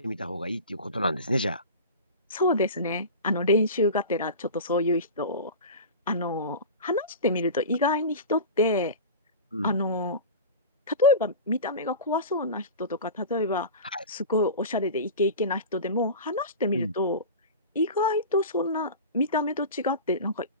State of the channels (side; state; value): both; inverted; correlation -0.30